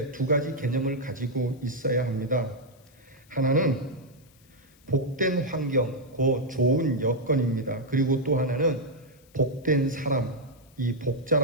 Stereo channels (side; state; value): left; noise; hiss, 30 dB below the sound